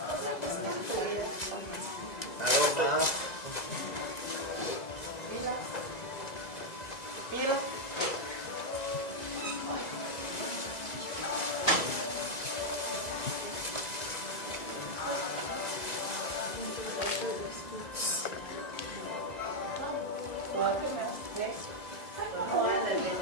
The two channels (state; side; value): late; right; 2.0 ms